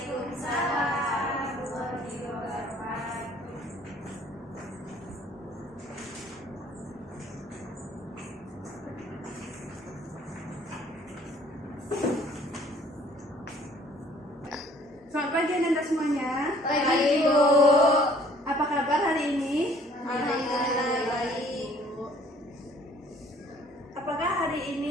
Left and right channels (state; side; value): normal; both; correlation 0.57